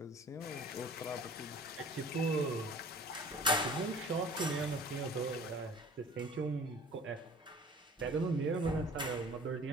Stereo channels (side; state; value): both; normal; correlation 0.47